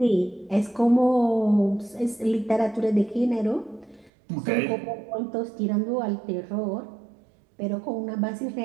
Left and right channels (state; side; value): drops out; left; at 4.1 s